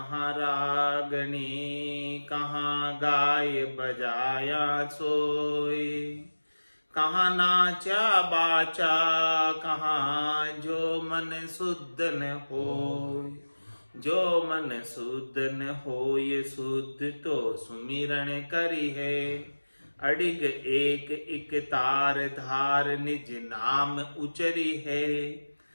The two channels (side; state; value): both; inverted; correlation -1.00